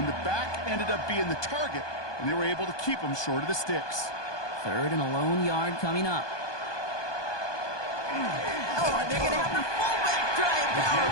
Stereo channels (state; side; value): late; right; 1.2 ms